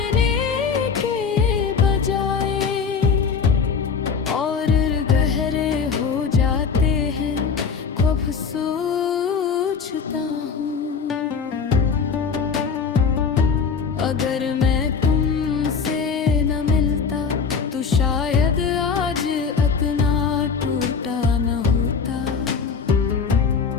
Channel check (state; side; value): quieter; right; 5.8 dB